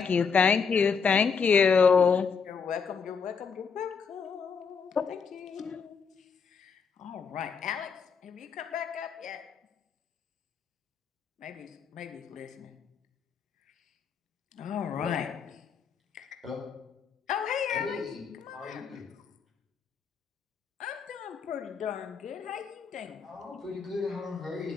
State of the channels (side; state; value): right; quieter; 5.8 dB